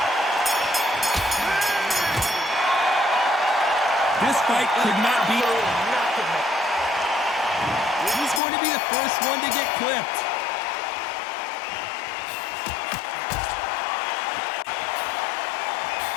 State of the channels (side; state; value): right; drops out; at 8.4 s